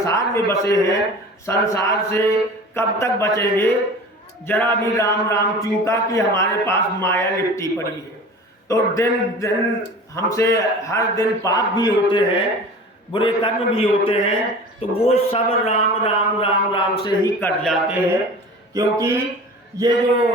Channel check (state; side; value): normal; both; correlation 0.39